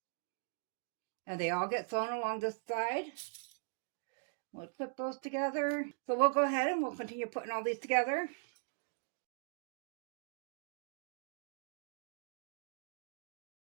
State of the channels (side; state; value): left; silent; digital silence